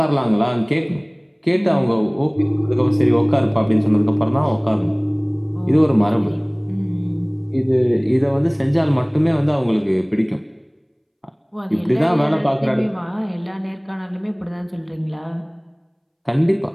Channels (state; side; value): identical; both; correlation 1.00